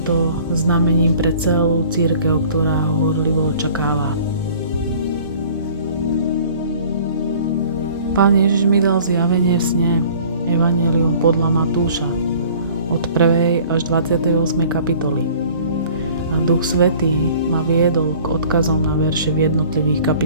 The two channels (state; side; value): inverted; both; correlation -0.49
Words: to znamením pre celú cirkev, ktorá ho horlivo očakáva. Pán Ježiš mi dal zjavenie v sne, evanjelium podľa Matúša, od 1. až 28. kapitoly. A Duch Svätý ma viedol k odkazom na verše v jednotlivých